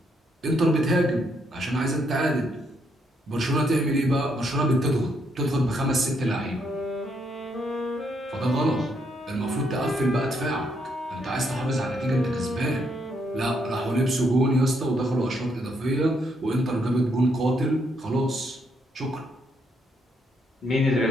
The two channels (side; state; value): both; normal; correlation 0.74